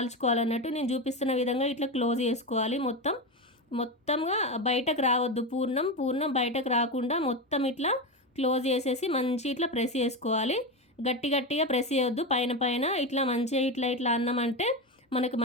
నేను చూపిస్తున్న విధంగా ఇట్లా క్లోజ్ చేసుకోవాలి. మొత్తంగా బయటకు రావద్దు. పూర్ణం బయటకు రాకుండా మొత్తం ఇట్లా క్లోజ్ చేసేసి మంచి ఇట్లా ప్రెస్ చేసుకోవాలి. గట్టిగా ప్రెస్ చేయొద్దు. పైన ఇట్లా మంచిగా ఇట్లా అన్నామంటే మనకు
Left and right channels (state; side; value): normal; both; correlation 0.17